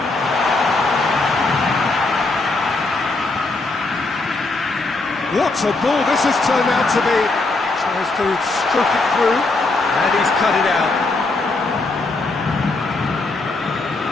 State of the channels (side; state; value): right; quieter; 3.4 dB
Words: What a ball this has turned out to be. Tries to stroke it through, and he's cut it out.